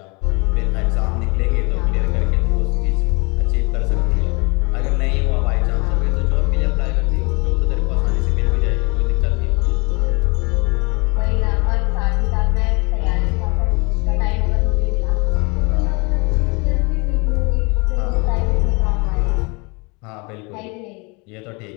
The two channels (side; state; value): right; quieter; 29.1 dB